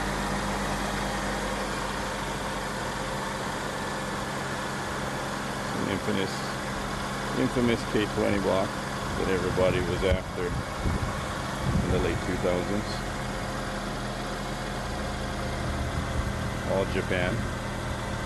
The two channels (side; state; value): both; identical; correlation 1.00